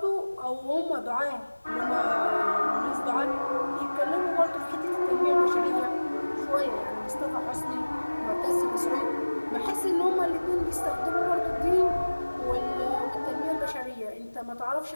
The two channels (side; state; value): both; inverted; correlation -1.00